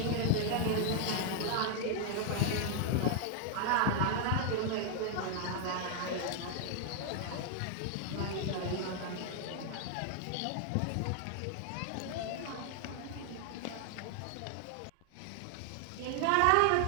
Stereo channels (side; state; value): both; different; correlation 0.00